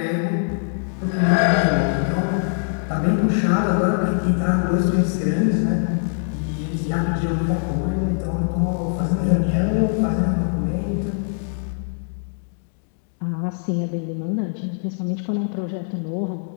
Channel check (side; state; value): right; silent; digital silence